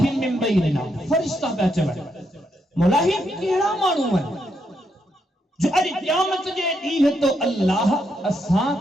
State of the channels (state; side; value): normal; both; correlation 0.79